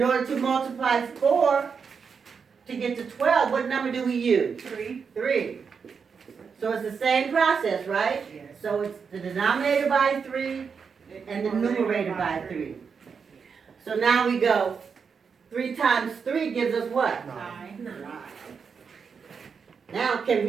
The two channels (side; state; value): left; quieter; 5.9 dB